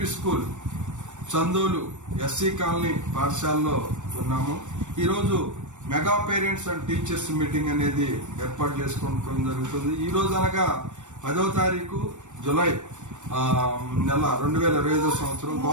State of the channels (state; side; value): late; left; 0.85 ms